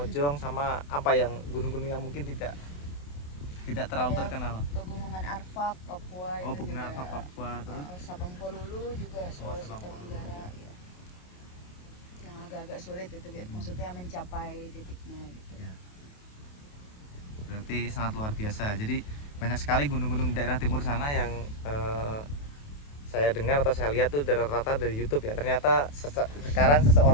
sama apa yang gunung-gunung yang mungkin tidak terlalu Ada terkenal. Pegunungan Arfak, Papua Oh, itu Pegunungan juga. Arfak, Papua, terus Sabang Polulu juga, Sulawesi Sabang Polulu. Tenggara ya. Yang agak-agak sulit itu, maksudnya mencapai titiknya gitu. Ya. Berarti sangat luar biasa. Jadi banyak sekali gunung-gunung daerah timur sana yang saya dengar atau saya lihat tuh rata-rata dari YouTube ya. Ternyata sekarang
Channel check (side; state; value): right; late; 28 ms